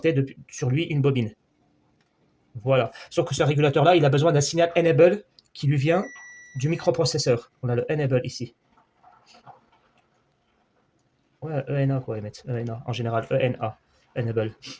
sur lui une bobine. Voilà. Sauf que ce régulateur-là, il a besoin d'un signal enable qui lui vient du microprocesseur. On a le enable ici. Ouais, ENA quoi, Emmett. ENA, en général, ENA, enable.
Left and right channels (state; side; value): identical; both; correlation 1.00